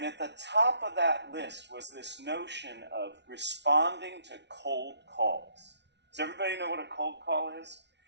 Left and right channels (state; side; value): late; left; 0.50 ms